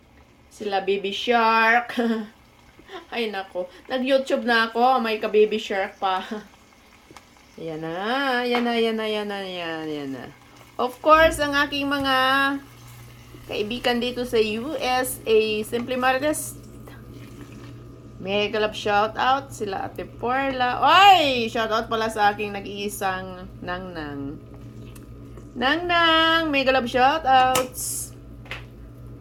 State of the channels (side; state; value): both; identical; correlation 1.00